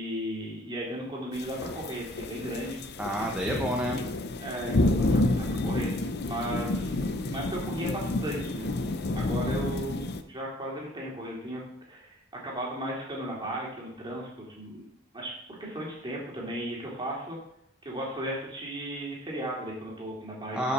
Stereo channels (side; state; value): both; normal; correlation 0.56